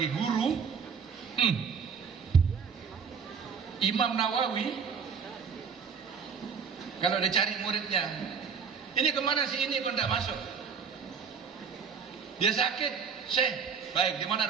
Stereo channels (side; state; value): left; quieter; 6.3 dB